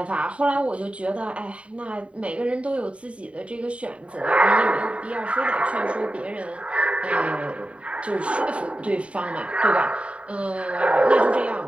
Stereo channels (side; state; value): left; late; 0.063 ms